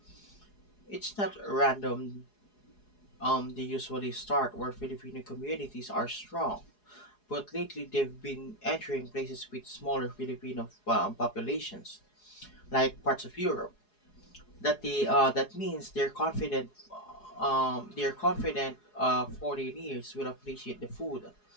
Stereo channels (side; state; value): right; late; 4.8 ms